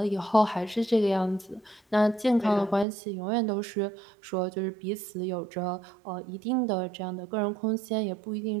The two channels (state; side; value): drops out; left; at 2.9 s